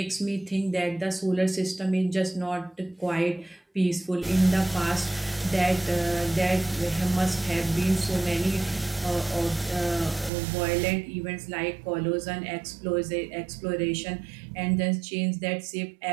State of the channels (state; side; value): drops out; left; at 10.3 s